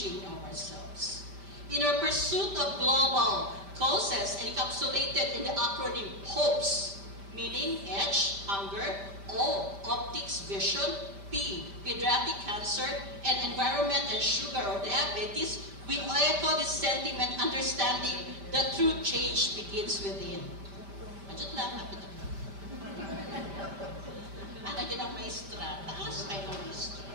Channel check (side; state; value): left; late; 5.1 ms